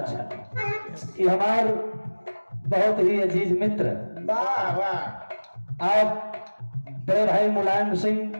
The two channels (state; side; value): inverted; both; correlation -1.00